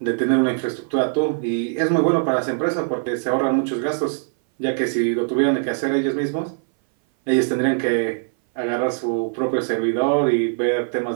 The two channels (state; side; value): silent; left; 59 dB below the other